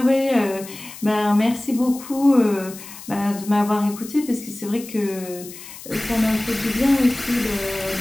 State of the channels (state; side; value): noise; left; hiss, 15 dB below the sound